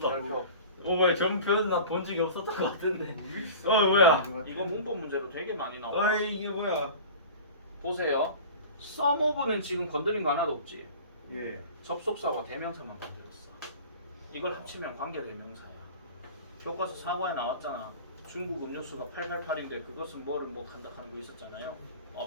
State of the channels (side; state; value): both; inverted; correlation -0.39